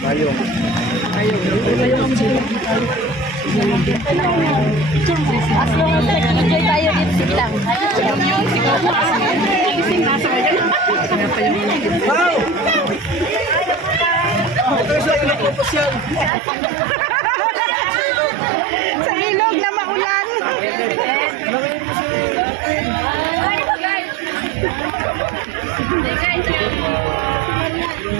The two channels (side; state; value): left; drops out; at 16.3 s